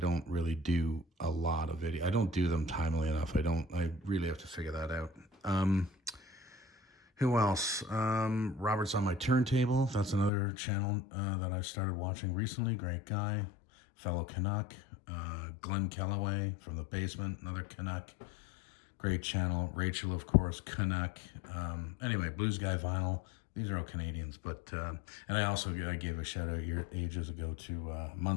really do a lot of video. I don't do them timely enough. I really have to figure that out. Who else? Robert's on My Turntable. That's another channel that I started watching recently. Great guy, fellow Canuck. Glenn Kellaway from The Basement, another Canuck. Great channel. Rachel, of course, Canuck. Anyway, Blues Guy Vinyl. These are all Canadians, but and I gave a shout out ages ago to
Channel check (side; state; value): right; drops out; at 10.3 s